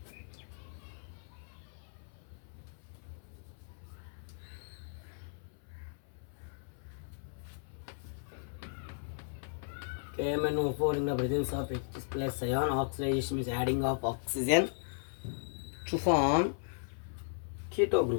KMnO4 in the presence of H plus ion. Oxidation means adding of oxygen to form keto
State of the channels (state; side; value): silent; right; 54 dB below the other